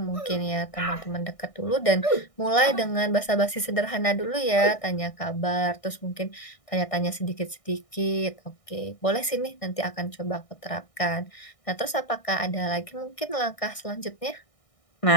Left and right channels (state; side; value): late; right; 1.6 ms